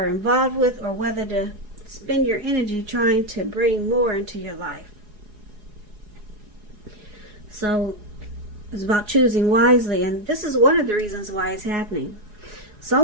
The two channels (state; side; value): late; left; 4.8 ms